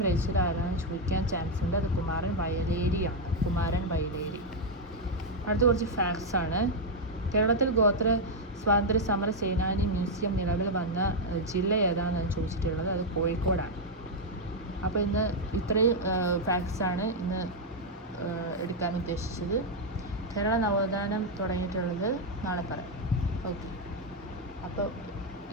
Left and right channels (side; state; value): both; normal; correlation 0.00